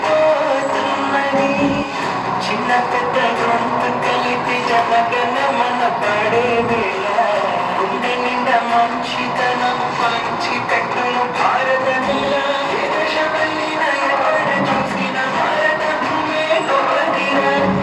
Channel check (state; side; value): identical; both; correlation 1.00